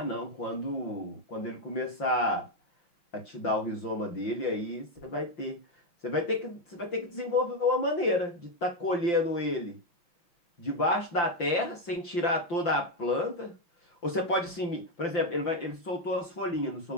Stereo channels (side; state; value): right; late; 5.8 ms